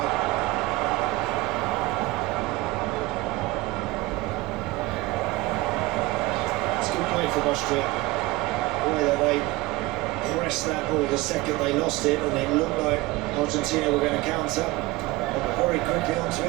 It's good play from Austria. The way that they pressed that ball the second they lost it, and it looked like Argentina were going to counter. They were very quickly onto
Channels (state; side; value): quieter; left; 20.2 dB